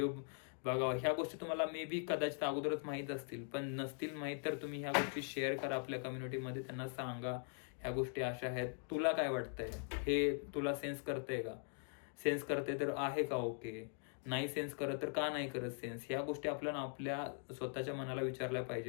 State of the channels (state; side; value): silent; right; 50 dB below the other